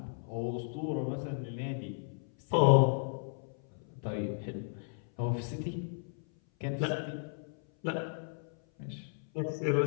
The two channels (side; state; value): right; silent; 55 dB below the other